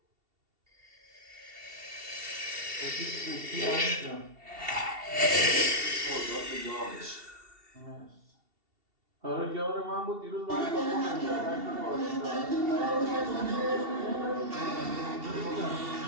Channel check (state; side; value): late; left; 2.7 ms